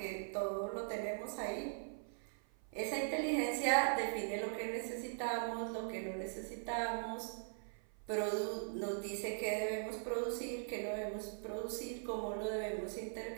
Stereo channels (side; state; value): left; silent; 50 dB below the other